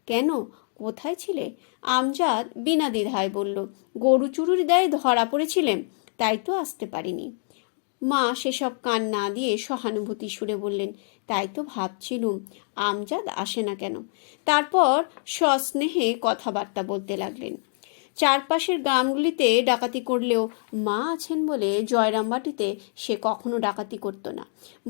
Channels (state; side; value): silent; right; 58 dB below the other